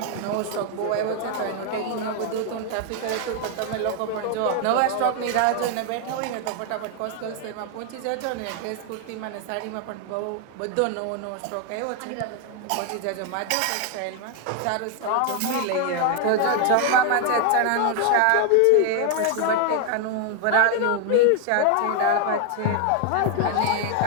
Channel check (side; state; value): both; different; correlation 0.00